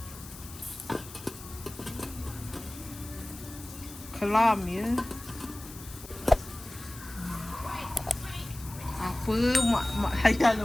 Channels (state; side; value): noise; left; hiss, 16 dB below the sound